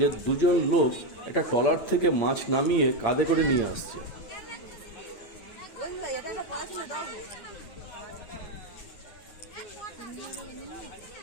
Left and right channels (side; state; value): right; late; 9.2 ms